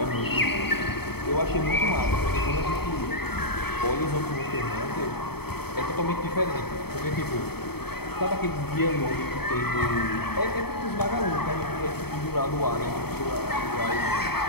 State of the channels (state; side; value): late; right; 0.96 ms